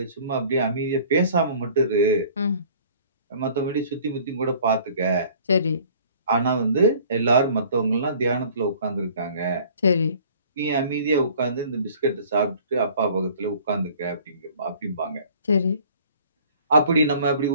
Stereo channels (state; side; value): inverted; both; correlation -0.52